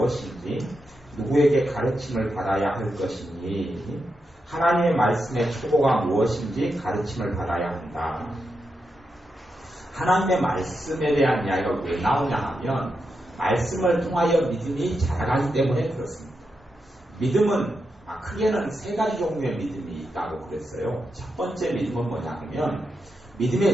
누구에게 가르침을 받아야 할 것이니 하나님의 말씀의 초보가 무엇인지 가르침을 받아야 한다. 하나님의 말씀에 대한 이야기가 왜 나오냐 하면 말씀을 통하여 믿음이 자라가기 때문에 그렇습니다. 믿음은 크게는 세 가지 종류의 믿음이 있다고 그랬어요. 첫 번째 믿음은 뭐냐면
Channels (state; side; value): normal; both; correlation 0.86